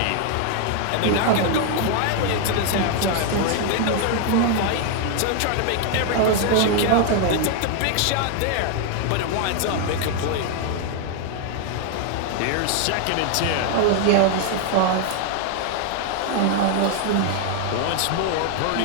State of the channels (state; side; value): different; both; correlation 0.00